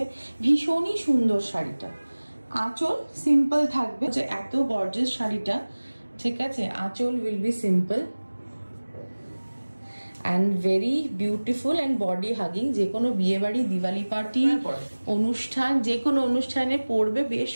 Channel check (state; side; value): inverted; both; correlation -1.00